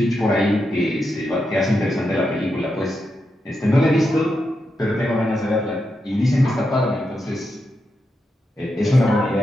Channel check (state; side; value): normal; both; correlation 0.86